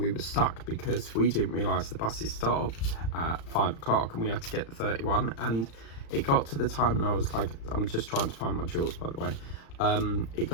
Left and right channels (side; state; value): right; late; 35 ms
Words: were stuck because we didn't realise the buses stopped at 5 o'clock and we had to get the 31, and it got to the time and I was like, I'm just trying to find my jewels, by the way. It